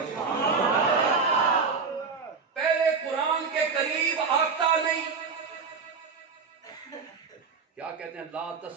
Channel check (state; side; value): quieter; left; 5.1 dB